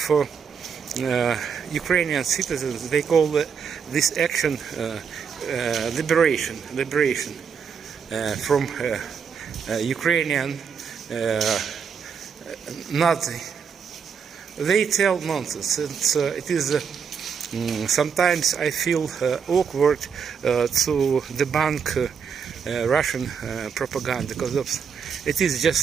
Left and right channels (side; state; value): left; quieter; 6.6 dB